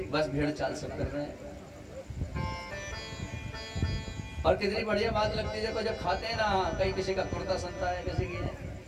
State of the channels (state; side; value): identical; both; correlation 1.00